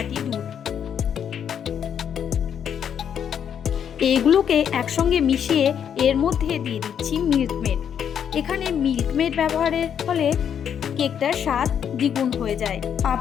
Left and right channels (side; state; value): right; quieter; 8.4 dB